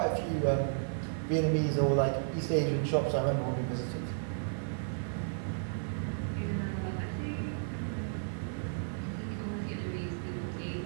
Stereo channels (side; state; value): left; silent; digital silence